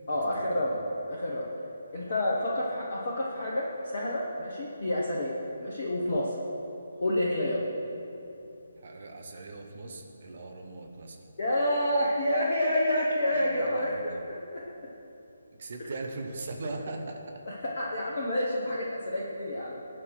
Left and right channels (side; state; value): both; inverted; correlation -0.81